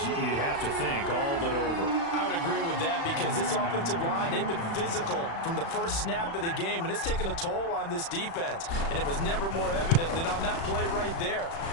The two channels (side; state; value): right; late; 36 ms